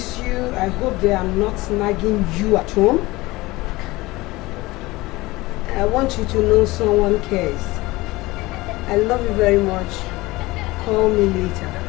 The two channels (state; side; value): quieter; right; 20.5 dB